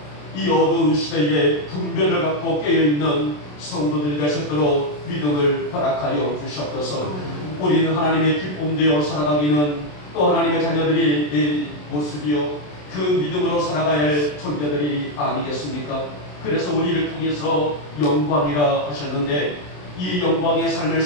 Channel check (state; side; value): late; right; 27 ms